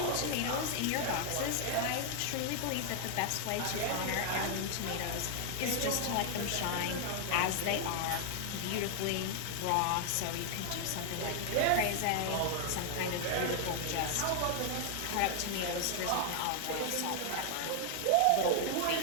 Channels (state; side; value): different; both; correlation 0.00